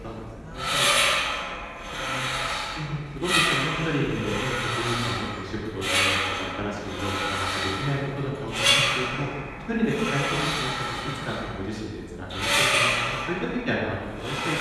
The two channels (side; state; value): both; identical; correlation 1.00